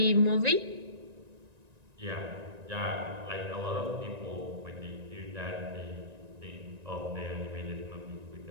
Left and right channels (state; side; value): late; left; 1.9 ms